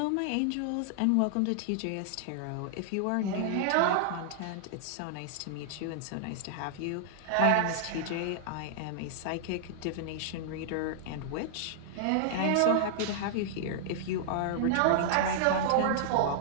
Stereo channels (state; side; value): different; both; correlation -0.01